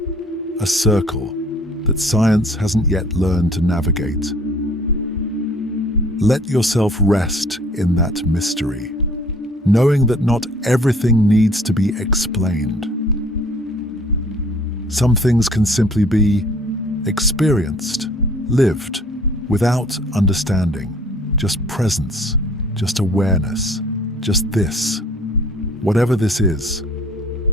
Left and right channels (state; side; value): normal; both; correlation 0.55